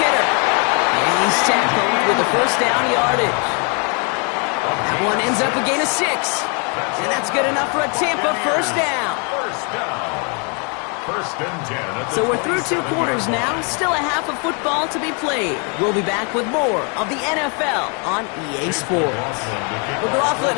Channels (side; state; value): right; quieter; 36.2 dB